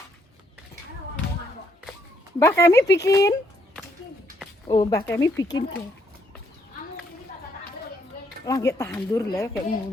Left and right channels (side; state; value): both; normal; correlation 0.71